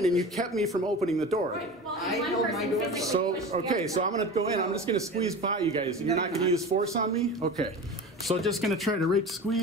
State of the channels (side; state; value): both; normal; correlation 0.32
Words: and you kept me from opening the door. well, I one held my person door. physically So, pushed the okay, other so I'm gonna go in, I'm just gonna squeeze by you guys, and you're not gonna use force on me? Okay. So just gonna try to